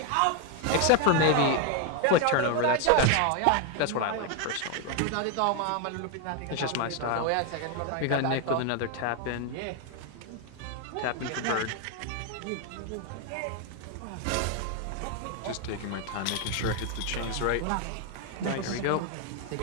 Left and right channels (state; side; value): different; both; correlation 0.01